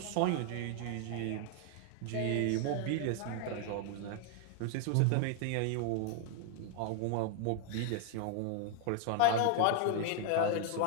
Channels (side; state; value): both; different; correlation 0.00